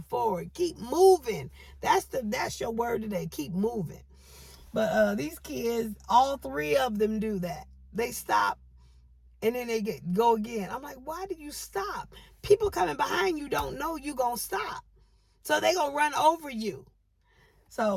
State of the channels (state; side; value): identical; both; correlation 1.00